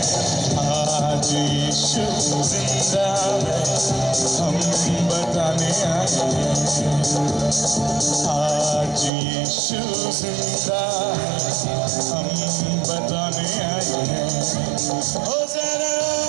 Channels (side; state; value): left; drops out; at 9.1 s